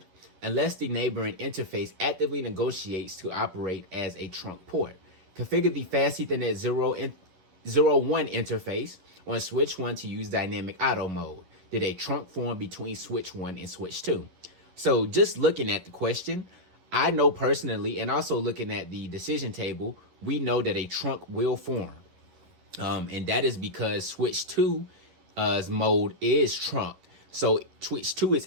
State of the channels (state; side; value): late; left; 11 ms